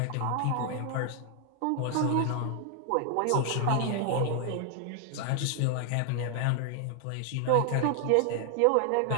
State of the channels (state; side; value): different; both; correlation 0.00